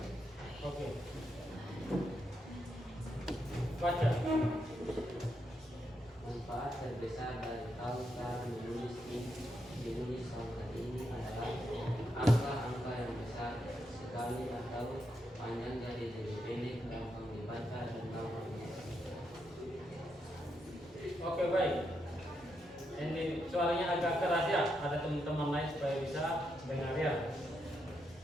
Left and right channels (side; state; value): both; normal; correlation 0.81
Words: Baca. Manfaat terbesar dari tahu cara menulis pangkat ini adalah angka-angka yang besar sekali atau panjang jadi lebih pendek, gampang dibaca dan gampang diingat. Oke, baik. Ini suaranya agak keras ya. Ada teman-teman lain supaya bisa dengar ya.